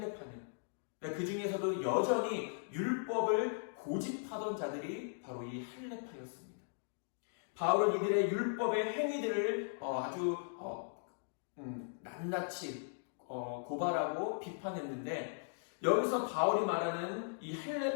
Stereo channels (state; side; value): silent; right; digital silence